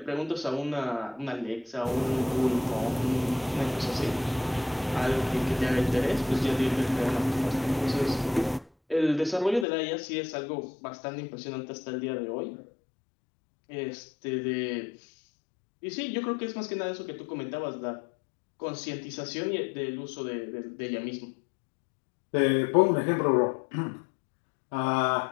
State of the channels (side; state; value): right; drops out; at 9.7 s